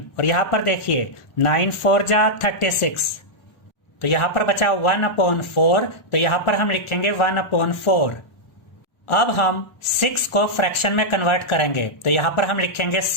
और यहाँ पर देखिए 9 4 जा 36, तो यहाँ पर बचा 1/4, तो यहाँ पर हम लिखेंगे 1/4। अब हम 6 को फ्रैक्शन में कन्वर्ट करेंगे, तो यहाँ पर हम लिखेंगे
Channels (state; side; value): late; right; 1.4 ms